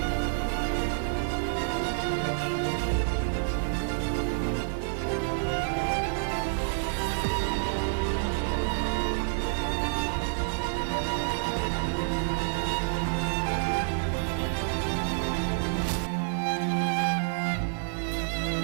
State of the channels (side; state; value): left; silent; 56 dB below the other